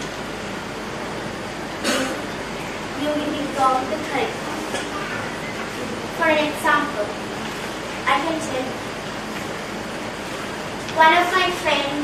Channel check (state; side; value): identical; both; correlation 1.00